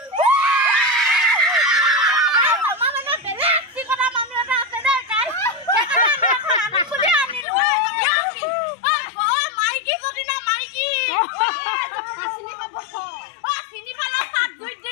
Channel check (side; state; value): right; drops out; at 7.5 s